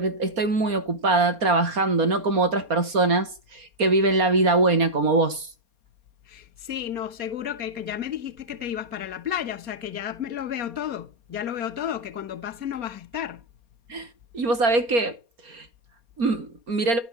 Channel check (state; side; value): late; left; 4.3 ms